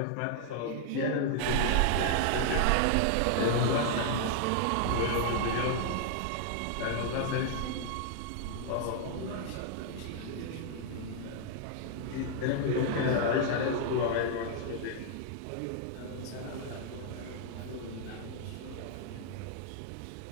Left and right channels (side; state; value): both; different; correlation 0.00